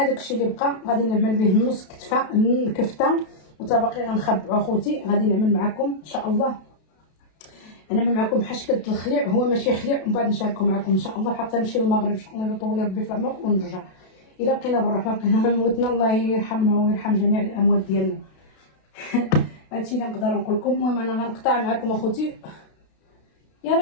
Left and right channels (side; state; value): right; late; 32 ms